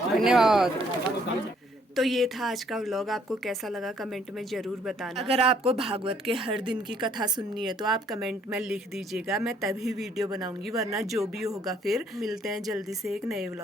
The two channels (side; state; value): both; normal; correlation 0.65